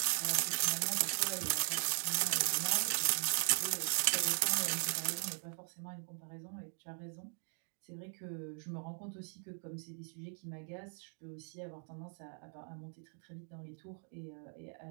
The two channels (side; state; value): left; silent; 52 dB below the other